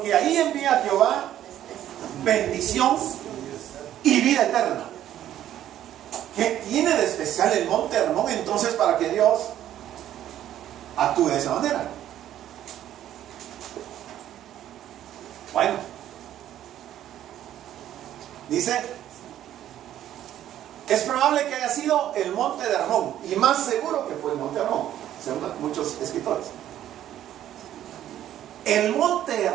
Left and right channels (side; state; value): left; quieter; 11.8 dB